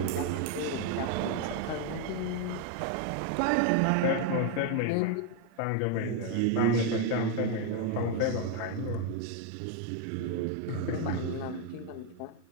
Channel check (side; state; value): both; different; correlation 0.01